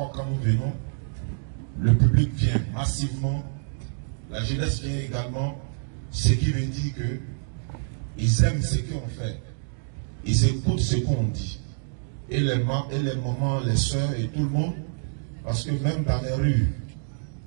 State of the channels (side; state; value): left; silent; digital silence